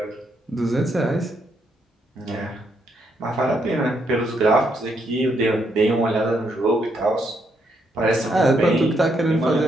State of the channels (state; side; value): normal; both; correlation 0.76